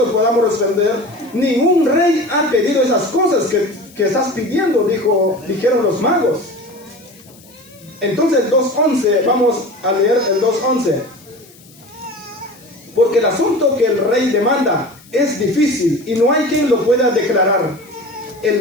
podamos responder. Ningún rey ha pedido esas cosas que estás pidiendo, dijeron los magos. Entonces el 2.11, vamos a leer el 2.11. Porque el asunto que el rey demanda es difícil y no hay quien lo pueda declarar.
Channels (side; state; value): left; noise; hiss, 25 dB below the sound